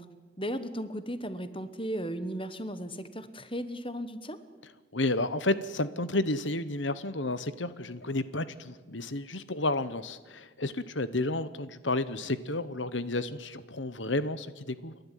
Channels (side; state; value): both; normal; correlation 0.16